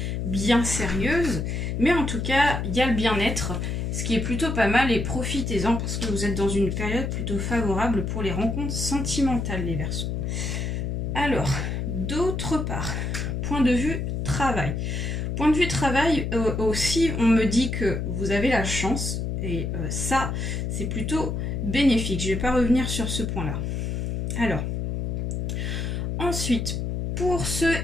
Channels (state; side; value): noise; left; hum, 2 dB below the sound